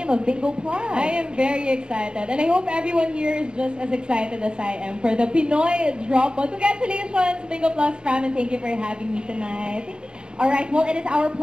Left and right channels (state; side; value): late; left; 0.050 ms